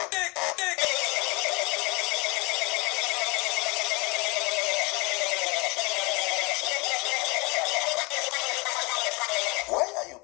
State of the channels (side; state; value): right; quieter; 27.6 dB